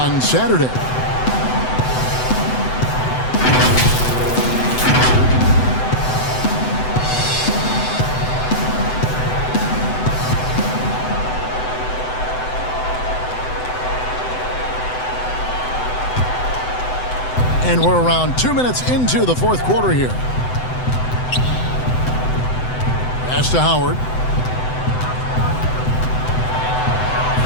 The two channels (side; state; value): right; late; 7.9 ms